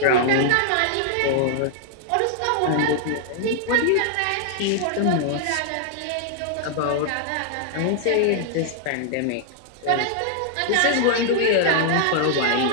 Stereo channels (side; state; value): both; different; correlation -0.01